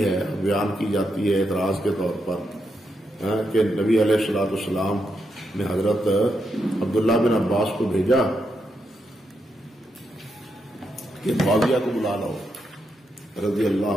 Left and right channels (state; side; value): normal; both; correlation 0.83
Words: ہے، بیان کی جاتی ہے اعتراض کے طور پر کہ نبی علیہ الصلوۃ والسلام نے حضرت عبداللہ بن عباس کو بھیجا کہ معاویہ کو بلا لاؤ رضی